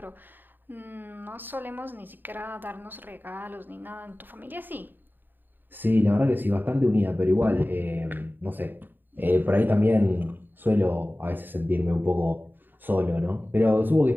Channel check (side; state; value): left; late; 0.092 ms